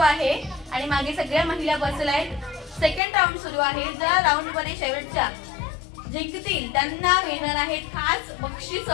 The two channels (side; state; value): right; drops out; at 3.0 s